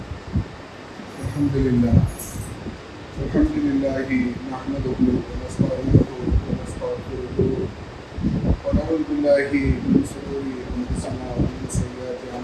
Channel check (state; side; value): identical; both; correlation 1.00